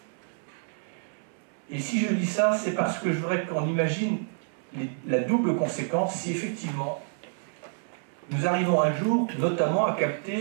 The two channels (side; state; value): left; silent; 59 dB below the other